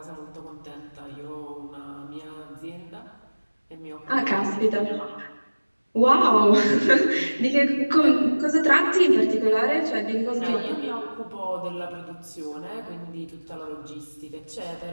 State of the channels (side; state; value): both; inverted; correlation -1.00